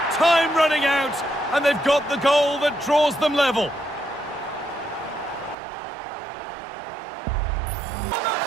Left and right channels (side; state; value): left; drops out; at 5.6 s